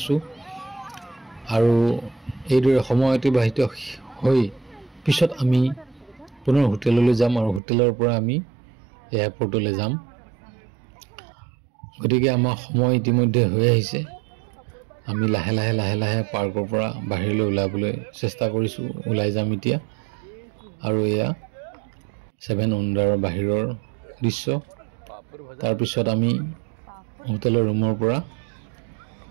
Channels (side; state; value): left; drops out; at 7.6 s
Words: আৰু এইদৰে সময় অতিবাহিত হৈ পিছত আমি পুনৰ হোটেললৈ যাম আৰু হোটেলৰ পৰা আমি এয়াৰপৰ্টলৈ যাম। গতিকে আমাৰ সময় ইতিমধ্যে হৈ আহিছে। আমি লাহে লাহে পাৰ্কৰ পৰা বাহিৰলৈ ওলাবলৈ চেষ্টা কৰিছোঁ। ওলাই যাম এতিয়া। আৰু এয়া 7 উণ্ডাৰৰ বাহিৰৰ দৃশ্য। তাৰপিছত আমি হোটেলৰ ৰুমৰ পৰা